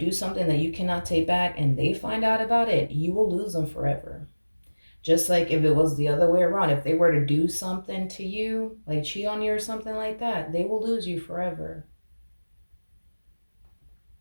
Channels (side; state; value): both; inverted; correlation -1.00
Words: something that you cannot take back and they find out about it, you will lose them forever. Just like if it was the other way around, if they were to do something to you, like cheat on you or something like that, they will lose you forever.